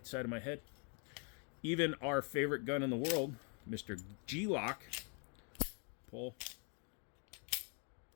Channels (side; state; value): right; quieter; 38.7 dB